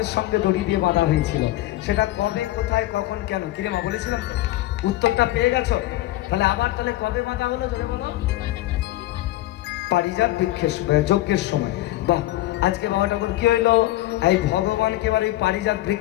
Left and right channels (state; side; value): quieter; right; 16.1 dB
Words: সঙ্গে দড়ি দিয়ে বাঁধা হয়েছিল, সেটা কবে, কোথায়, কখন, কেন? কিরে মা বলেছিলাম, উত্তরটা পেয়ে গেছো? তাহলে আবার তাহলে কবে বাঁধা হলো জোরে বলো? পারিজাত বৃক্ষের যজ্ঞের সময়। বাহ, আজকে বাবা ঠাকুর কি হইলো, এই ভগবানকে এবার এই পারিজাত